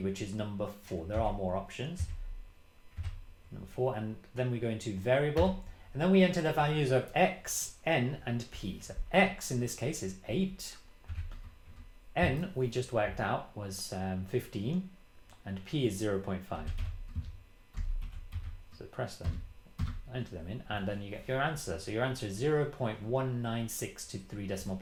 which is number 4. There are more options. Number 4, and then we go into variable, and then we enter the values of x, n, and p. So x in this case is 8, n we just worked out was 15, and p is 0.5. So press them, enter them in, and then you get your answer. So your answer is 0.196 to 3 decimal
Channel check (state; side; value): identical; both; correlation 1.00